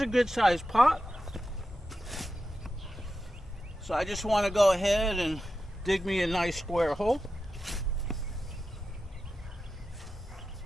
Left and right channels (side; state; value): both; normal; correlation 0.91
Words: good sized pot. So I just want to go ahead and dig me a nice square hole.